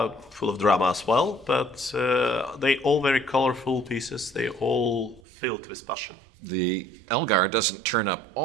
of drama as well. But they all very colorful pieces. They all filled with passion. The Elgar doesn't turn up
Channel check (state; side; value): drops out; left; at 5.2 s